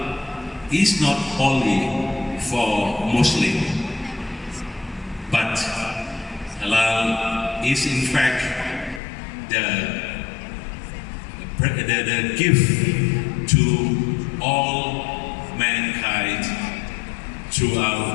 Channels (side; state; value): right; drops out; at 9.0 s